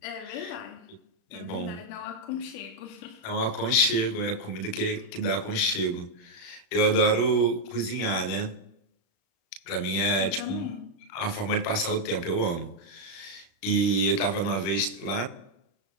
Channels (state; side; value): late; right; 35 ms